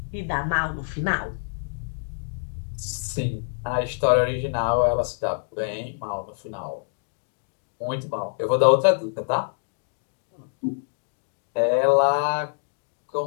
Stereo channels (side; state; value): right; silent; digital silence